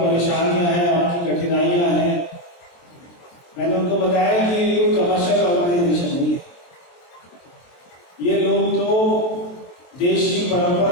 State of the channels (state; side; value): late; right; 23 ms